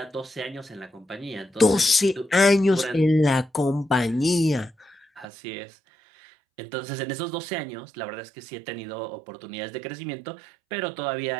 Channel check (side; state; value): left; drops out; at 5.2 s